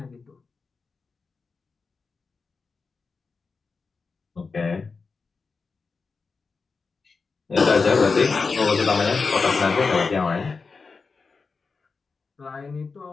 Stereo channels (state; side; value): quieter; right; 4.6 dB